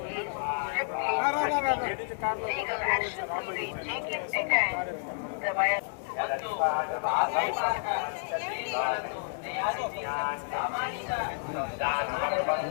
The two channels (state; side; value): silent; right; digital silence